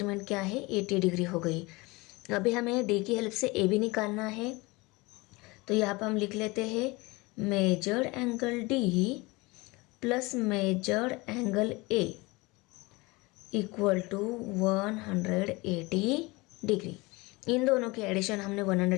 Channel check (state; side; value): quieter; right; 23.8 dB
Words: क्या है, 80 डिग्री हो गई। अभी हमें डी की हेल्प से ए भी निकालना है, तो यहाँ पर हम लिख लेते हैं measured angle D plus measured angle A equal to 180 degree. इन दोनों की एडिशन हमने